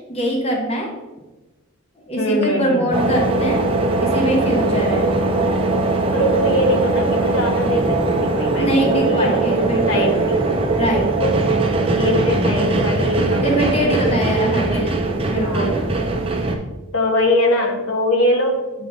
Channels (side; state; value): both; normal; correlation 0.27